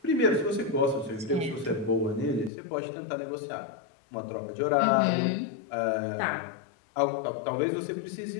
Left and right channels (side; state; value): right; drops out; at 2.5 s